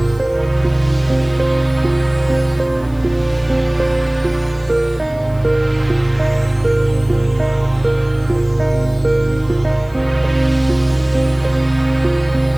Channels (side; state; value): left; noise; hiss, 28 dB below the sound